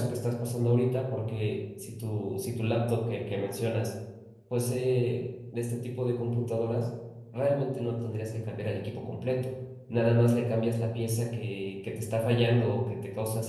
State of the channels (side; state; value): both; identical; correlation 1.00